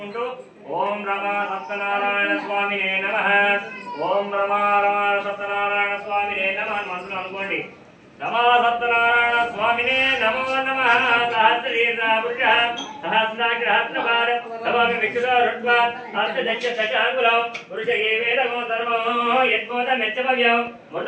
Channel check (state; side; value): identical; both; correlation 1.00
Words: ఓం రమా సత్యనారాయణ స్వామినే నమః ఓం రమా సత్యనారాయణ స్వామినే నమః మనసులో అనుకోండి नमो सत्यनारायण स्वामिने नमो नमः सहस्रीर्नापुरुषः सहस्राग्रहस्रभार नमामि विष्णुरुद्वा अर्थदक्ष दशाङ्गुलं पुरुष एवेदमो धर्मो यद्बोधमेत्यभव्यं